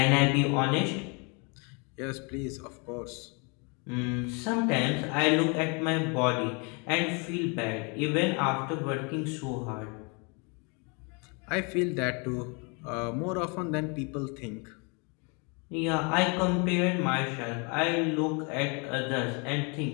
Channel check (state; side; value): quieter; right; 32.9 dB